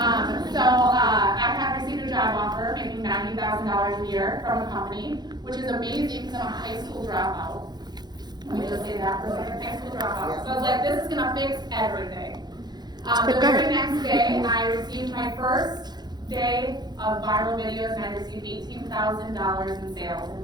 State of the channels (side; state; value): left; late; 0.20 ms